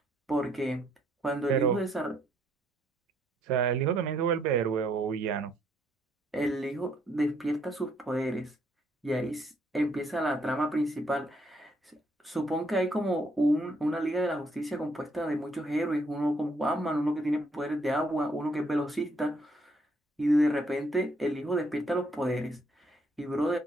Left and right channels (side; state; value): both; normal; correlation 0.71